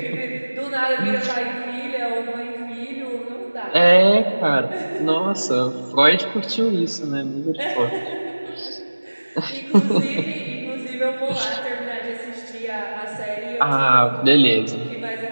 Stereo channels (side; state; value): both; inverted; correlation -1.00